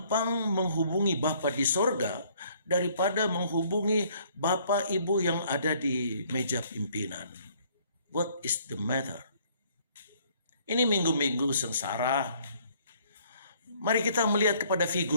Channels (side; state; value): both; inverted; correlation -0.62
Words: menghubungi Bapa di sorga daripada menghubungi Bapak Ibu yang ada di meja pimpinan. What is the matter? Ini minggu-minggu sengsara. Mari kita melihat kepada